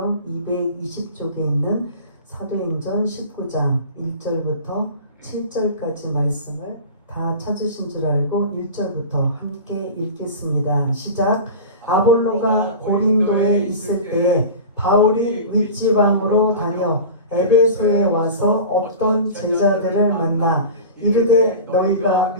220쪽에 있는 사도행전 19장 1절부터 7절까지 말씀을 다 찾으신 줄 알고 1절부터 함께 읽겠습니다. 시작. 아볼로가 고린도에 있을 때에 바울이 윗지방으로 다녀 에베소에 와서 어떤 제자들을 만나 이르되 너희가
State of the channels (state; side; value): inverted; both; correlation -0.33